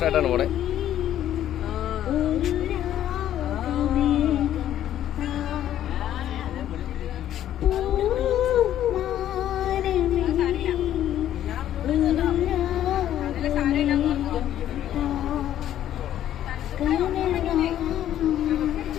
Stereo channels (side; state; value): right; quieter; 11.6 dB